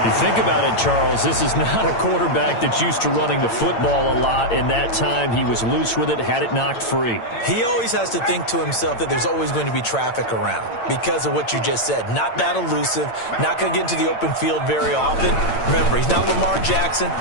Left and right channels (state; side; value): late; right; 8.9 ms